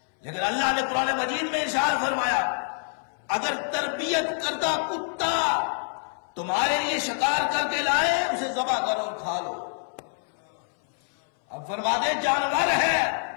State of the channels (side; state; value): right; silent; 60 dB below the other